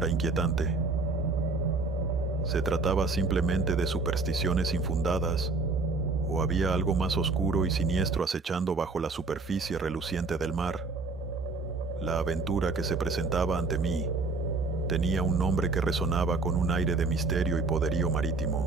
inquietante? ¿Se trataba simplemente de supersticiones infundadas, o había algo más oscuro y siniestro acechando bajo la superficie reluciente del mar? La aventura que se presentaba ante mí tenía un nombre que resonaba con un aire de misterio y poderío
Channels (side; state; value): left; quieter; 3.7 dB